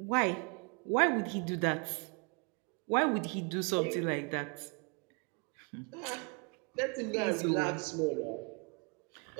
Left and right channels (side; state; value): left; quieter; 34.8 dB